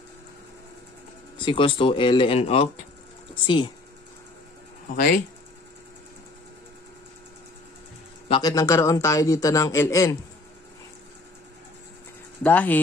is equals to ln of c. Okay? Bakit nagkaroon tayo dito ng ln?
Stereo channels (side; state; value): right; quieter; 3.1 dB